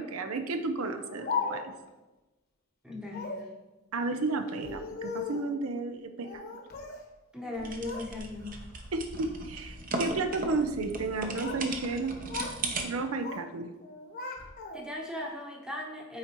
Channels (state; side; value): normal; both; correlation 0.18